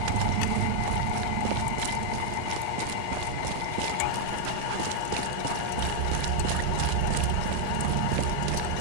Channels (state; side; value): different; both; correlation 0.00